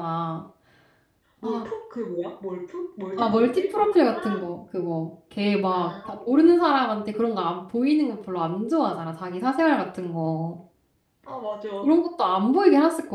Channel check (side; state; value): both; identical; correlation 1.00